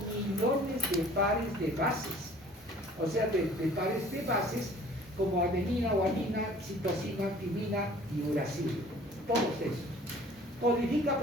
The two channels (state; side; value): normal; both; correlation 0.51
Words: millones de pares de bases, o sea, de pares de bases como adenina, guanina, citosina, timina y uracilo. Todos esos. Codifica